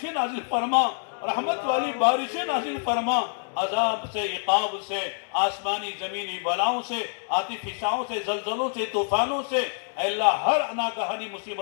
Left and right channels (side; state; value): right; silent; 61 dB below the other